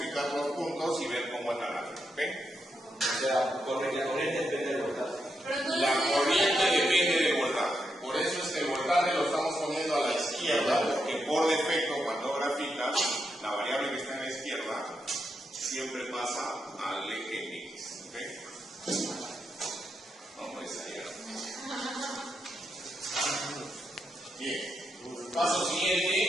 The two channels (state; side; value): normal; both; correlation 0.83